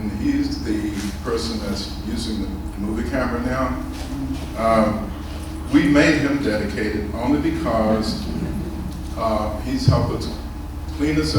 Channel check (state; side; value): identical; both; correlation 1.00